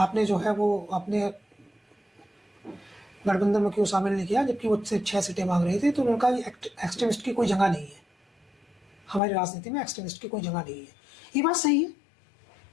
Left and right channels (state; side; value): drops out; right; at 9.2 s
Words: जो है वो अपने गठबंधन में क्यों शामिल नहीं किया, जबकि वो सिर्फ 6 सीटें मांग रही थी, तो उनका एक्सट्रीमिस्ट की कोई जगह नहीं है, हमारी राजनीति में एक्सट्रीमिस्ट की कोई जगह नहीं है। ये बात सही है।